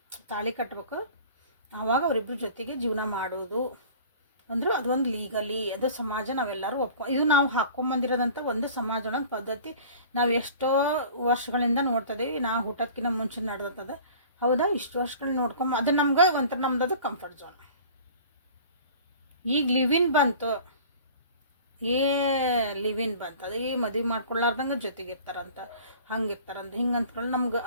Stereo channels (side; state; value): both; inverted; correlation -0.44